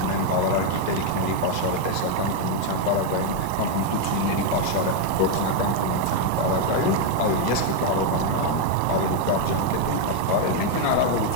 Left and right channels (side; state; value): both; different; correlation 0.01